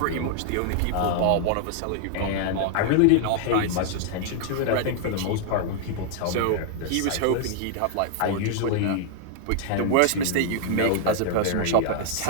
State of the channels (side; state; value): both; different; correlation 0.00